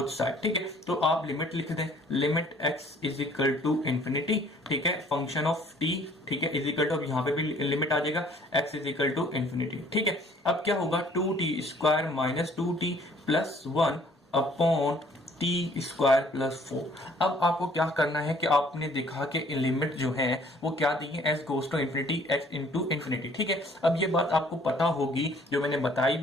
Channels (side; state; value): both; normal; correlation 0.57